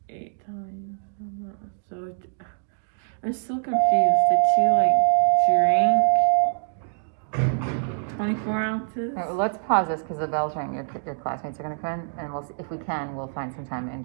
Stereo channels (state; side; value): silent; left; digital silence